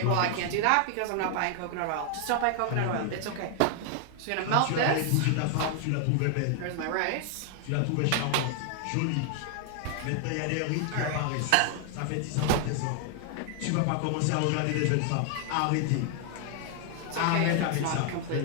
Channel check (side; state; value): both; different; correlation 0.00